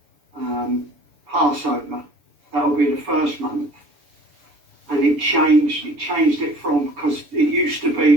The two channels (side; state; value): left; late; 6.9 ms